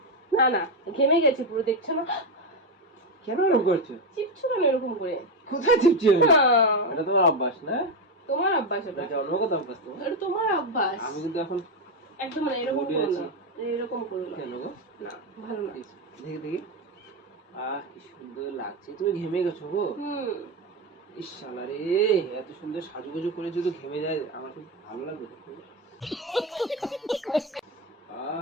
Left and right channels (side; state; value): both; normal; correlation 0.10